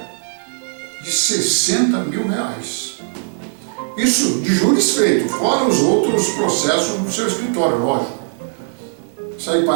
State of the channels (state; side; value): silent; left; digital silence